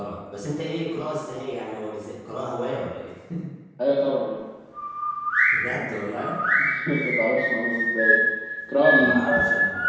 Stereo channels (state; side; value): identical; both; correlation 1.00